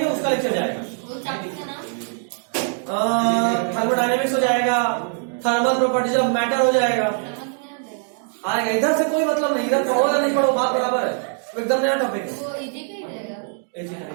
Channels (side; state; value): left; silent; 64 dB below the other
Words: है उसका लेक्चर जाएगा। वो चैप्टर का नाम थर्मोडायनेमिक्स हो जाएगा, थर्मल प्रॉपर्टीज ऑफ मैटर हो जाएगा, आएगा। इधर से कोई मतलब नहीं, इधर पढ़ो या नहीं पढ़ो बात बराबर है, एकदम नया टॉपिक है। वो इजी का ही रहेगा,